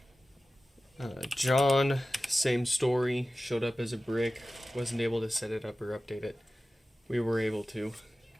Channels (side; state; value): both; normal; correlation 0.95